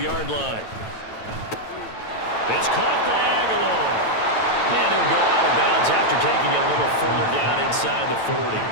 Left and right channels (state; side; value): late; right; 9.1 ms